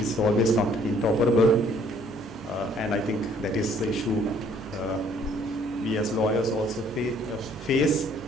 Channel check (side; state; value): both; normal; correlation 0.61